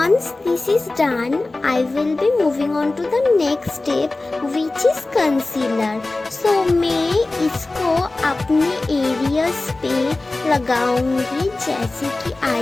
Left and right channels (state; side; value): quieter; right; 3.1 dB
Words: this is done, I will be moving on to the next step, which is concealer. So मैं इसको अपने एरियाज पे लगाऊंगी, जैसे कि